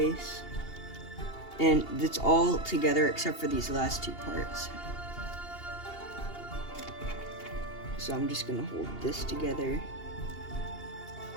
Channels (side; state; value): right; late; 2.8 ms